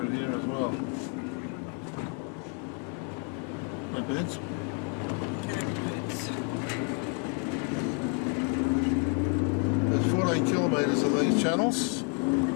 here as well. No birds? There's 14 kilometres of these channels.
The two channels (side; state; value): right; quieter; 33.4 dB